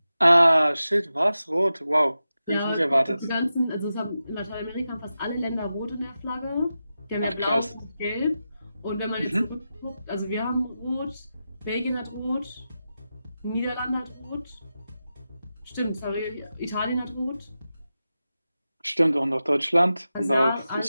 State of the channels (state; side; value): inverted; both; correlation -0.91